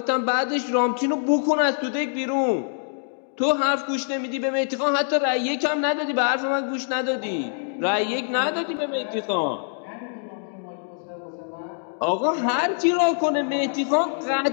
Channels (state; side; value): silent; right; digital silence